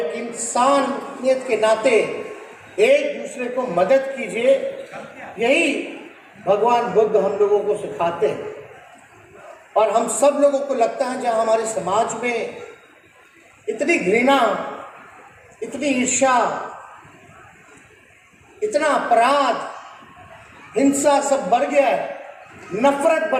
इंसानियत के नाते एक दूसरे को मदद कीजिए। यही भगवान बुद्ध हम लोगों को सिखाते हैं और हम सब लोगों को लगता है जहाँ हमारे समाज में इतनी घृणा, इतनी ईर्ष्या, इतना अपराध, हिंसा सब बढ़ गया है, नफरत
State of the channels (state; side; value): identical; both; correlation 1.00